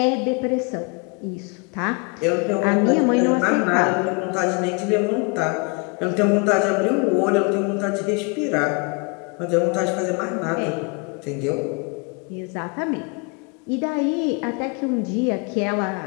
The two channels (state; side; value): quieter; right; 32.6 dB